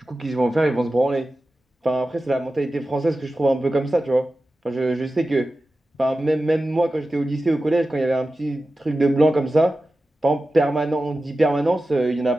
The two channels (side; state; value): both; normal; correlation 0.94